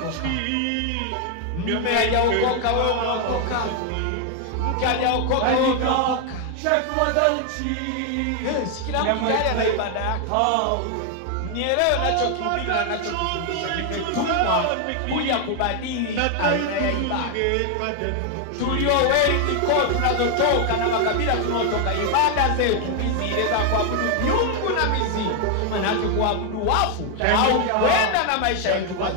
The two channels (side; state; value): both; different; correlation 0.00